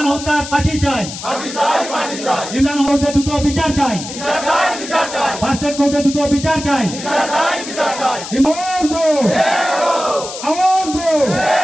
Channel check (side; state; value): left; noise; hiss, 10 dB below the sound